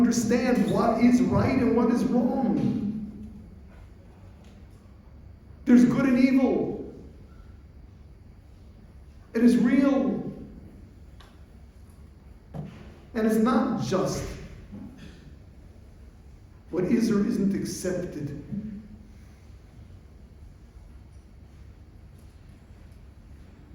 what is right and what is wrong. There's good and evil. It is real. And it's not just what is or isn't accepted.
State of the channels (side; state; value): both; identical; correlation 1.00